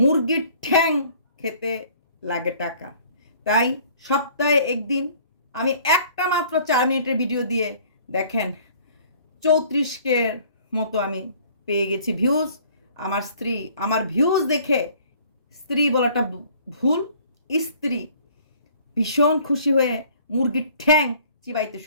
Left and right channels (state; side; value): inverted; both; correlation -0.55